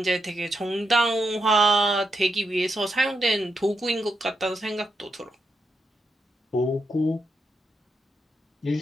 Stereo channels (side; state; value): both; normal; correlation 0.83